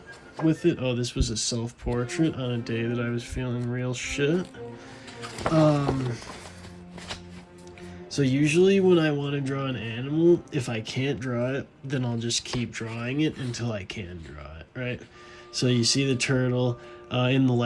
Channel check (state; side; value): identical; both; correlation 1.00